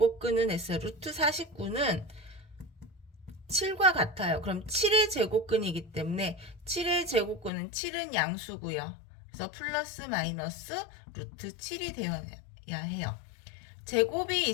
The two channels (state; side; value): drops out; right; at 7.5 s